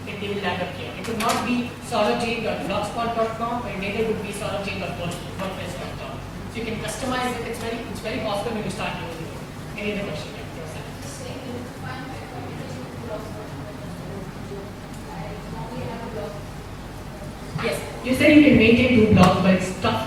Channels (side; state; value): both; identical; correlation 1.00